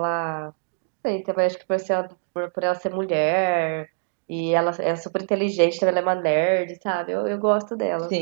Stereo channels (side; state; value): left; silent; digital silence